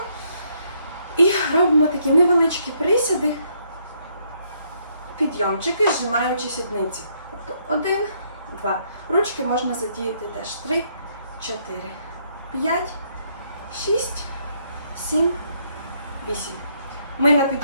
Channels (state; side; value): inverted; both; correlation -0.71